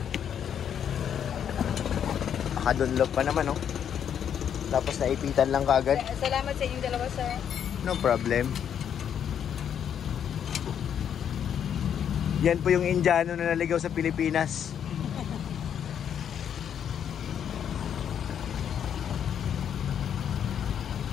Nakadunlog pa naman oh. Tapos naipitan lang kaagad. Salamat sa inyong dalawa, sir. No problem. Yan po yung Indiano na naligaw sa Pilipinas.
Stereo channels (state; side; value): quieter; right; 8.7 dB